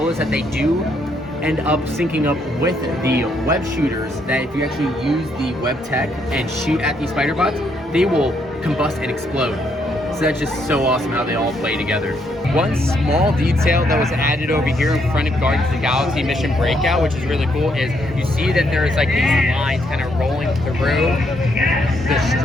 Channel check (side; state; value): both; normal; correlation 0.74